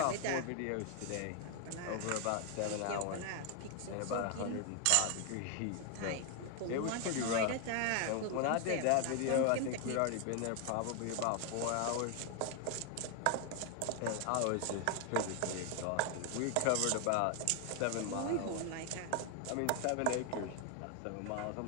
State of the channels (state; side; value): different; both; correlation 0.01